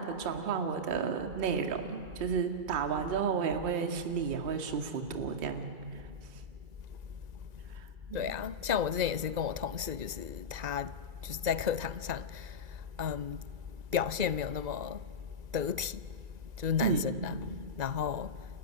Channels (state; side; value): late; left; 1.9 ms